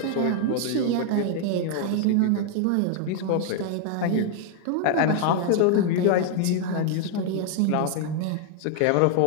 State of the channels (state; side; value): different; both; correlation 0.00